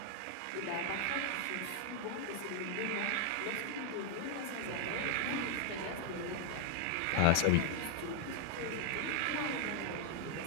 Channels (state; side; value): different; both; correlation 0.00